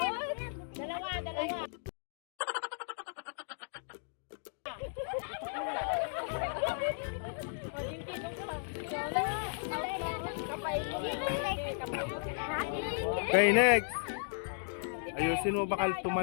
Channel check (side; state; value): right; silent; digital silence